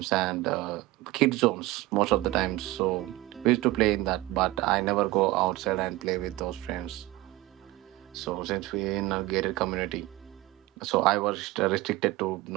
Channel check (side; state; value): left; quieter; 18.6 dB